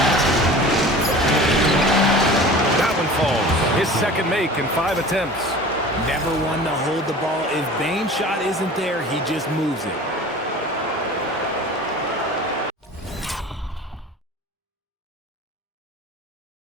His second make in 5 attempts. Never one to hold the ball. If Bain's shot isn't there, he just moves it.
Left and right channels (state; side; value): normal; both; correlation 0.40